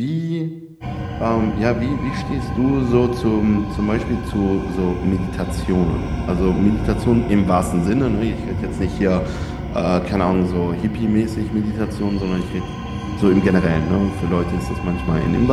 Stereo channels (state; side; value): identical; both; correlation 1.00